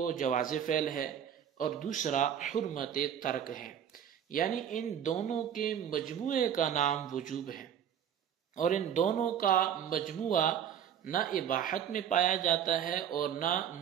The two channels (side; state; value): left; quieter; 9.2 dB